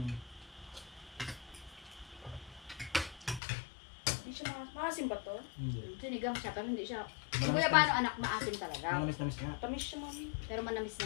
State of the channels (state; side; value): drops out; right; at 3.4 s